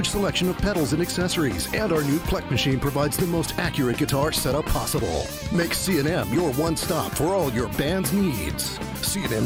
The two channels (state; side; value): identical; both; correlation 1.00